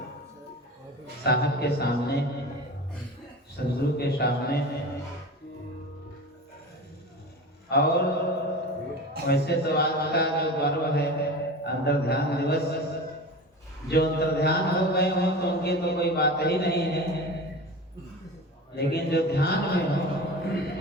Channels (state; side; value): normal; both; correlation 0.32